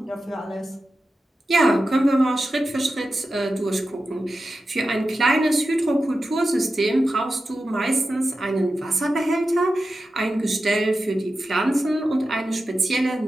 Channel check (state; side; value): normal; both; correlation 0.92